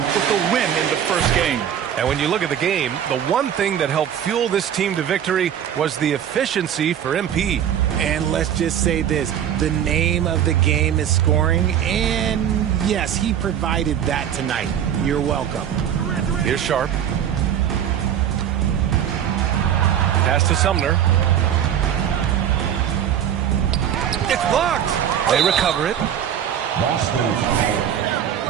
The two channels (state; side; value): quieter; left; 9.6 dB